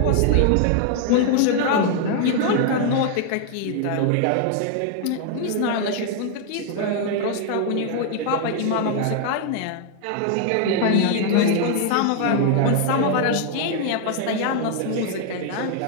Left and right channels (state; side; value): different; both; correlation 0.00